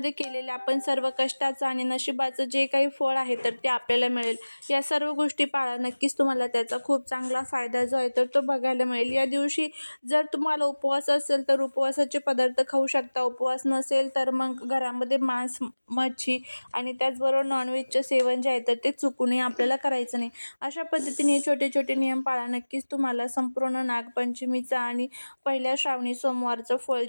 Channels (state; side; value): inverted; both; correlation -1.00